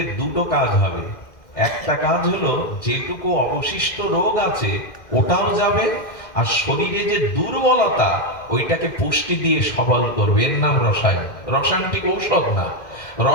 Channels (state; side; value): late; right; 2.1 ms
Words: দুটো কাজ হবে। একটা কাজ হলো যেটুকু অবশিষ্ট রোগ আছে ওটাও যাবে, আর শরীরে যে দুর্বলতা ওইটাকে পুষ্টি দিয়ে সবল করবে, এর নাম রসায়ন। রসায়ন ঠিক ঔষধ না।